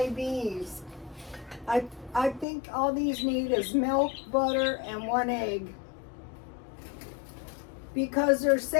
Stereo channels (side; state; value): right; drops out; at 2.5 s